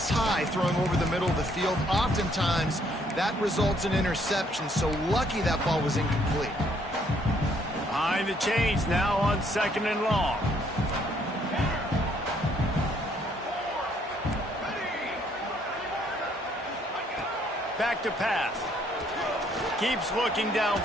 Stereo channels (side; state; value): both; normal; correlation 0.67